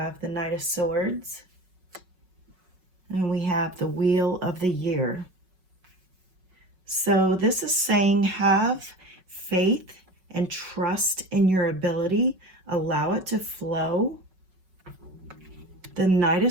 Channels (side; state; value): left; late; 5.4 ms